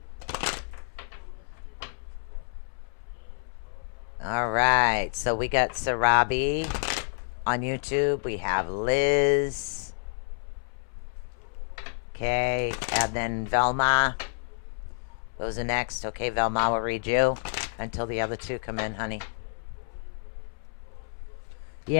we got Sarabi on YouTube. We have Liz. Okay, and then Velma. Those are next. Okay, Velma will read you until the other two come in, honey.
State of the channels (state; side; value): silent; right; 59 dB below the other